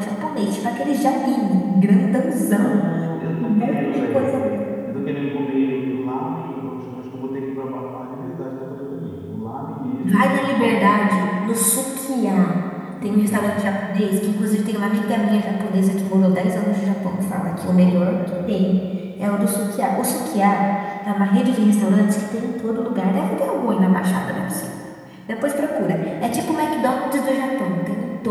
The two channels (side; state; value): both; identical; correlation 1.00